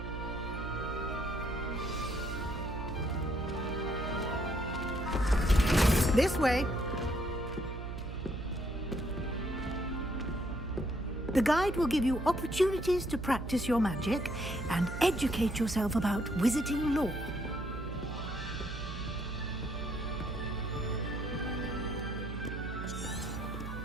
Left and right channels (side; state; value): right; noise; hum, 7 dB below the sound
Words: This way. The guide will give you opportunities to practice your magic and educate yourself about wizarding lore.